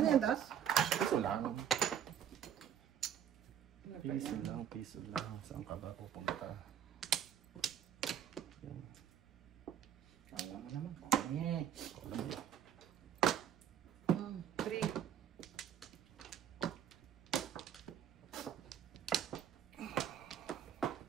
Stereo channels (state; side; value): quieter; left; 9.3 dB